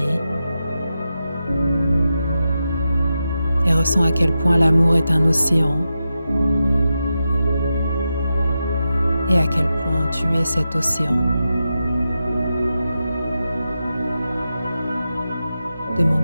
Et ressens à quel point l'amour est un océan. Et à quel point tu es cet océan. De mon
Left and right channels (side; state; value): both; inverted; correlation -0.89